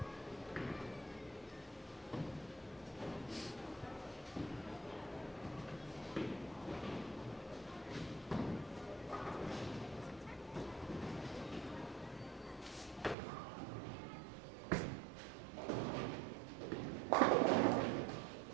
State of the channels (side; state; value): left; drops out; at 13.2 s